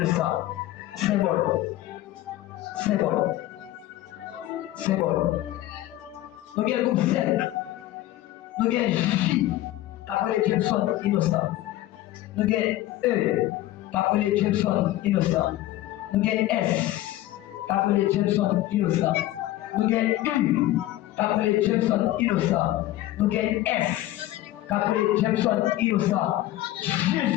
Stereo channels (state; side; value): quieter; right; 15.2 dB